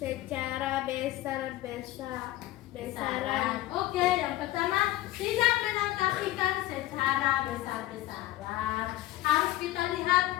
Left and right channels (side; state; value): right; quieter; 15.9 dB